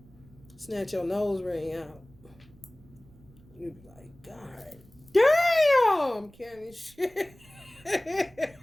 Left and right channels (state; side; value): noise; right; rumble, 25 dB below the sound